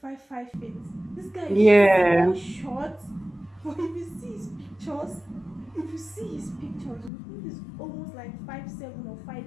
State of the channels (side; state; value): right; drops out; at 7.1 s